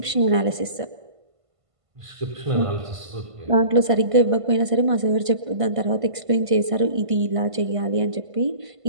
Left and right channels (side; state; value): left; late; 1.5 ms